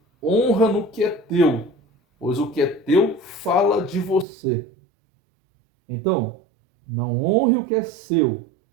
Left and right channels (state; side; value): drops out; left; at 4.2 s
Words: Honra no que é teu, pois o que é teu fala de você. Então, não honre o que é seu